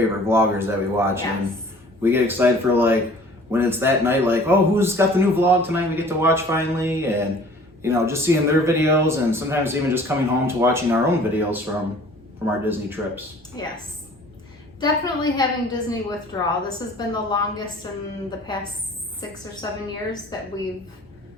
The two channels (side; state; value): both; normal; correlation 0.50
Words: vloggers that we watch, Yes. and we get excited for like when it's that night, like, oh, who's got the new vlog tonight? We get to watch finally, and just seeing their videos, and sometimes even just coming home to watching our own videos from our Disney trips. Yes. Definitely having Disney withdrawal. This has been the longest in the past 6 or 7 years that we've